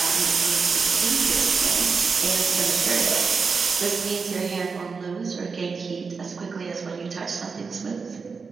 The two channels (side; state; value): left; quieter; 5.0 dB